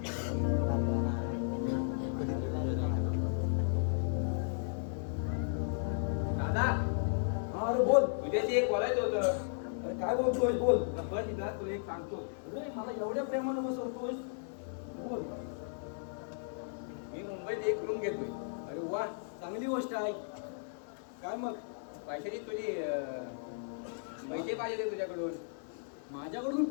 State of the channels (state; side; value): silent; right; digital silence